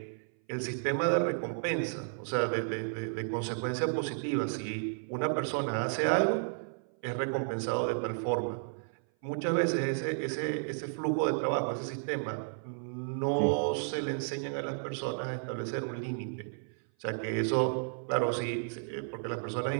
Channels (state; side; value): silent; left; 56 dB below the other